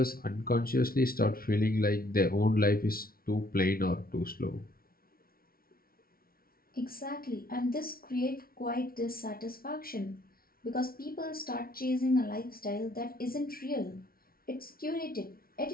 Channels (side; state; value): right; late; 0.43 ms